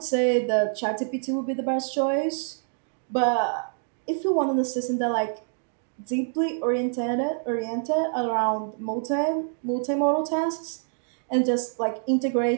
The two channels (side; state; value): left; silent; digital silence